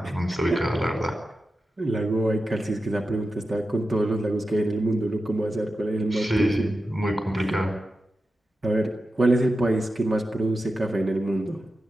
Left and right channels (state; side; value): normal; both; correlation 0.91